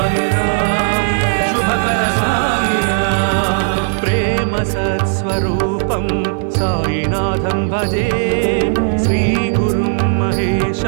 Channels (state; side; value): silent; left; digital silence